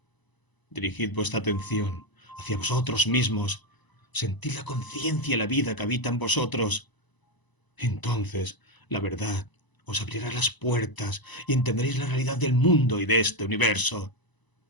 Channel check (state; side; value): late; right; 1.0 ms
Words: Dirigid vuestra atención hacia vosotros mismos, sentid la conciencia y la vida que habita en vosotros. Entonces, la verdad os abrirá las puertas y entenderéis la realidad del mundo y de este universo.